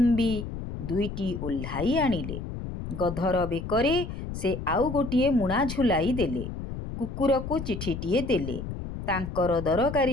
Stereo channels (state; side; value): noise; left; rumble, 7 dB below the sound